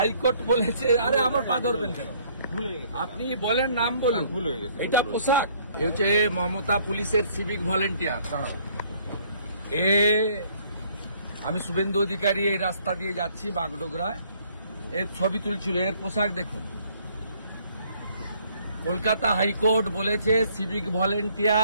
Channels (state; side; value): inverted; both; correlation -0.62